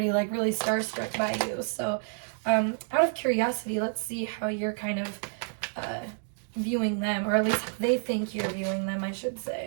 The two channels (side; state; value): left; silent; digital silence